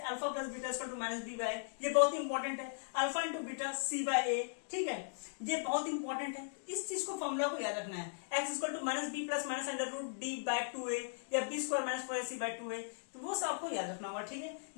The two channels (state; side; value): silent; right; digital silence